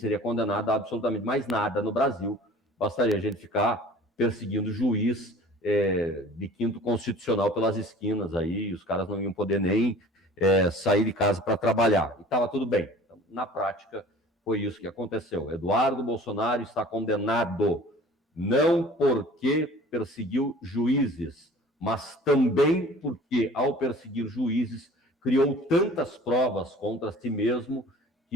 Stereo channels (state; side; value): normal; both; correlation 0.45